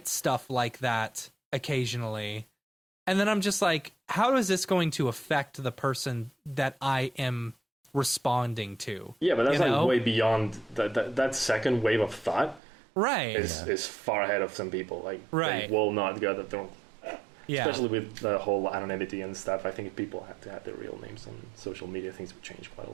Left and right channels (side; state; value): left; drops out; at 12.6 s